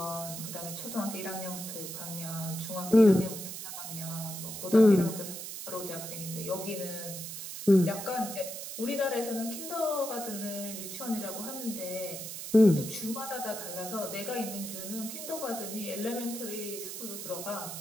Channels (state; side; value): noise; right; hiss, 8 dB below the sound